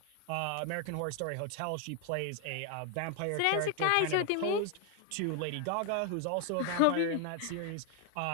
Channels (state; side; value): different; both; correlation 0.00